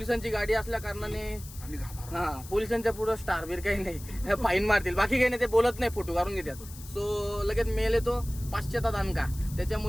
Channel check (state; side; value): noise; left; hiss, 16 dB below the sound